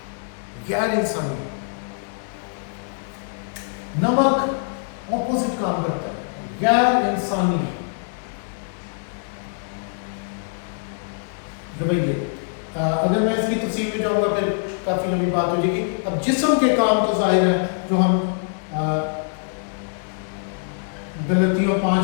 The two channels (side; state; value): right; silent; 63 dB below the other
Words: غیر انسانی نمک اپوزٹ کام کرتا ہے، غیر انسانی رویے۔ اگر میں اس کی تفصیل میں جاؤں گا پھر کافی لمبی بات ہو جائے گی۔ اب جسم کے کام تو ظاہر ہیں جو ہم غلطیوں